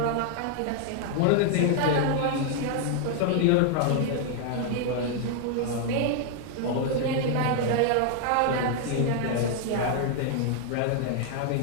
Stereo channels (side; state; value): both; different; correlation 0.00